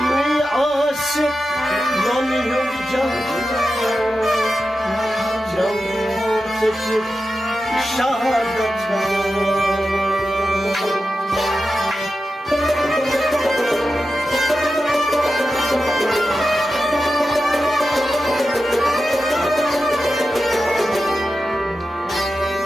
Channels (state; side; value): normal; both; correlation 0.91